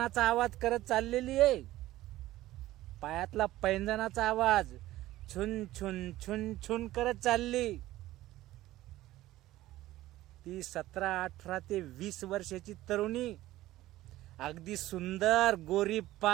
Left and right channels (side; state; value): left; quieter; 15.8 dB